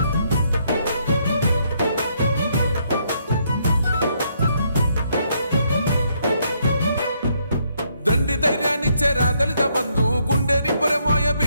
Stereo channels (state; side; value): inverted; both; correlation -0.72